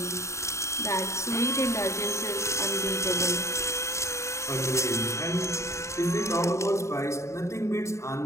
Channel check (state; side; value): late; right; 0.14 ms